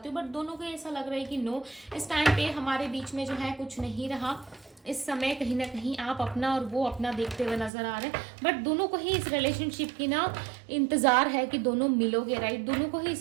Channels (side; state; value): left; drops out; at 7.7 s